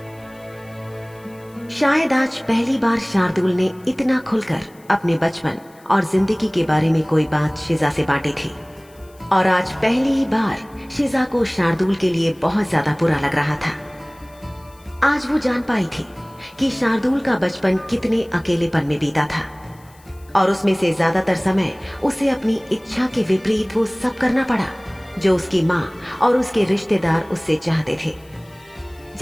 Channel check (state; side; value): noise; left; hiss, 29 dB below the sound